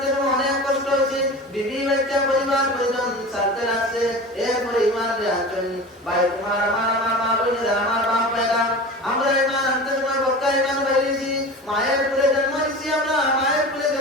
অনেক কষ্ট হয়েছে, বিবি বাচ্চা পরিবার পরিজন সাথে লাগছে, এরপরে ঈমান রে আছেন। ভাই তোমার আমার মা বোনেরা আমার বাপ ভাইরা আমরা ঈমান আনতে সময় বক্কা ঈমান বাইরেছি, মায়ের কুলে জন্ম নিছি, আমরা মায়ের কুলে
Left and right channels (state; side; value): normal; both; correlation 0.33